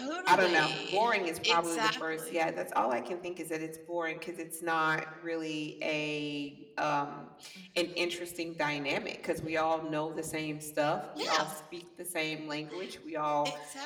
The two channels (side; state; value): both; identical; correlation 1.00